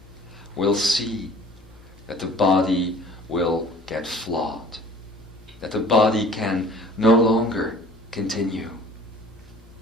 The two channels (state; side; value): noise; right; hum, 20 dB below the sound